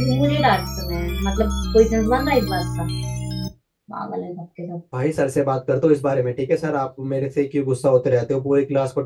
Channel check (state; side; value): identical; both; correlation 1.00